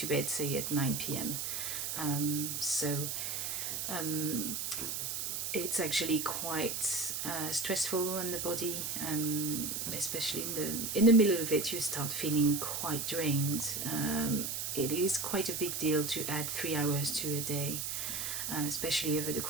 bed, say, at 9 p.m. It's actually quite stressful on the body, especially in the middle of it. You start feeling quite drained. It is quite a big deal to add 3 hours to a day, especially over the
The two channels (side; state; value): right; noise; hiss, 2 dB below the sound